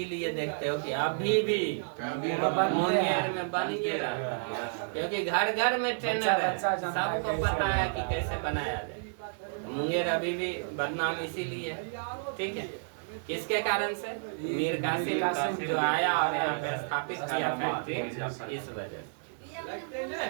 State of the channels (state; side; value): silent; left; digital silence